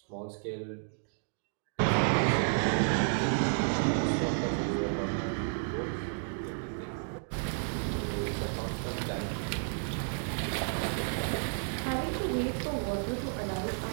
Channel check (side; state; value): left; silent; 56 dB below the other